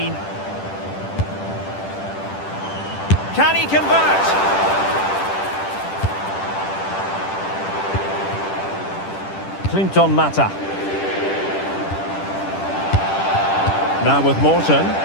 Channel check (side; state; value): right; late; 10 ms